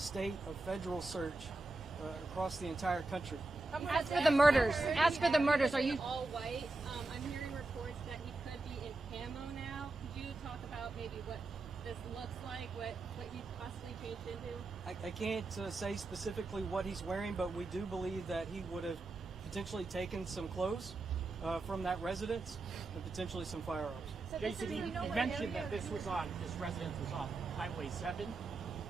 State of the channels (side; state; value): left; quieter; 3.1 dB